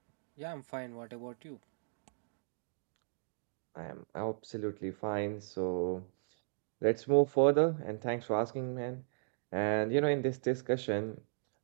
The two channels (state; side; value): silent; left; digital silence